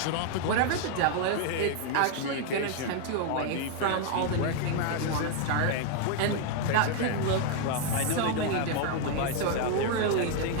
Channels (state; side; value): different; both; correlation 0.00